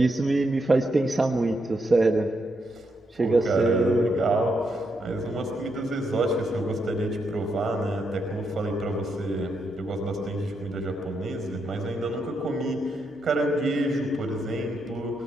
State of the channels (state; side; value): normal; both; correlation 0.80